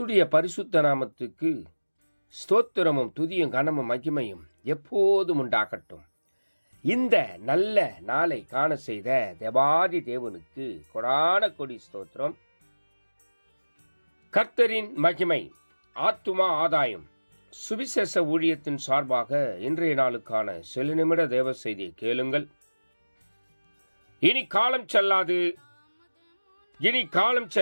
பரிசுத்த நாமத்துக்கு ஸ்தோத்திரமும் துதியும் கனமும் மகிமையும் எப்போதும் உண்டாகட்டும். இந்த நல்ல நாளை காண செய்த தேவாதி தேவனுக்கு கொடான கொடி ஸ்தோத்திரம். கர்த்தரின் மகிமை ஆத்துமா ஆதாயம் சுவிசேஷ ஊழியத்தின் சார்பாக இன்றைய நாளுக்கான சில நிமிட தேவ செய்தியை கேளுங்கள். இனி காலம் செல்லாது, இனி காலம்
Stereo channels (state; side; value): inverted; both; correlation -1.00